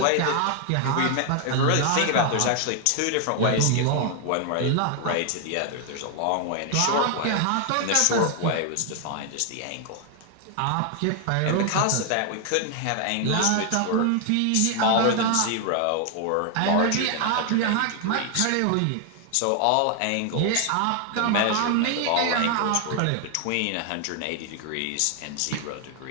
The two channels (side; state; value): both; different; correlation 0.00